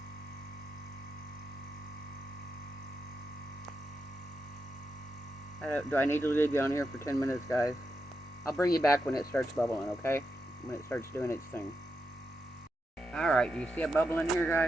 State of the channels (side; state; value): both; normal; correlation 0.86